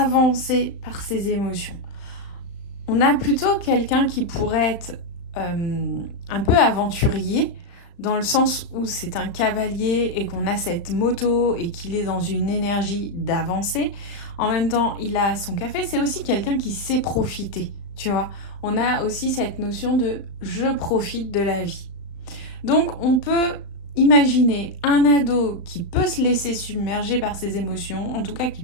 par ses émotions. On a plutôt quelqu'un qui pourrait être un peu aventurier, dans le sens où c'est un cavalier et qu'on a cette moto et qu'il est dans une énergie d'avancer. En même temps, il a son café. C'est aussi quelqu'un qui sait profiter, tu vois. On a aussi cette notion de « je profite de la vie ». Donc, on peut imaginer un ado qui peut se laisser submerger par ses émotions, en tout cas qui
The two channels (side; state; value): right; late; 35 ms